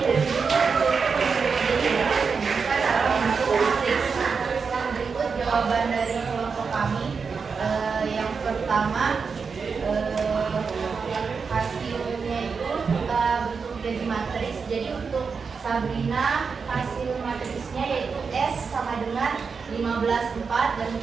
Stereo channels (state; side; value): quieter; left; 5.4 dB